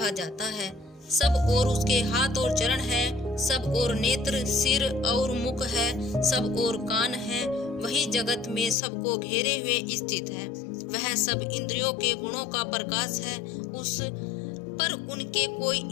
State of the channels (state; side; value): drops out; right; at 8.8 s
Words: जाता है। सब और उसके हाथ और चरण है, सब और नेत्र, सिर और मुख है, सब और कान है। वही जगत में सबको घेरे हुए स्थित है। वह सब इंद्रियों के गुणों का प्रकाश है। उस पर उनके कोई